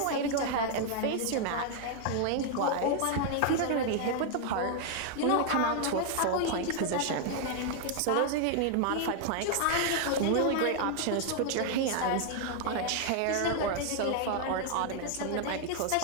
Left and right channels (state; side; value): different; both; correlation 0.00